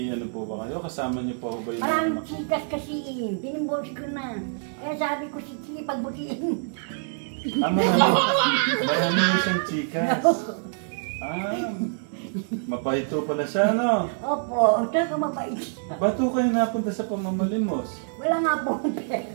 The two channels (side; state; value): left; silent; digital silence